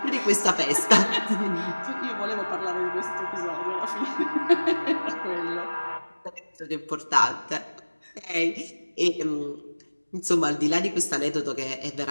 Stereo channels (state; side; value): inverted; both; correlation -1.00